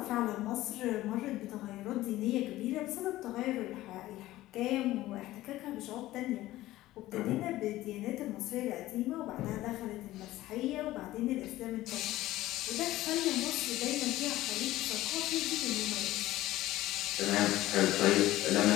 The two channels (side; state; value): right; quieter; 16.1 dB